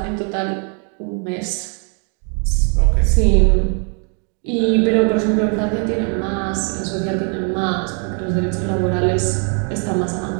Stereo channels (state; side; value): quieter; left; 39.4 dB